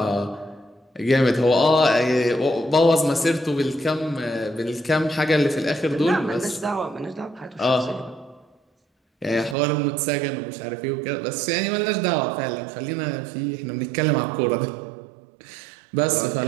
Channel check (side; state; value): left; drops out; at 9.6 s